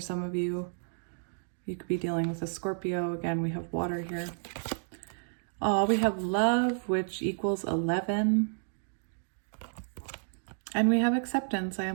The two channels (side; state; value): left; silent; digital silence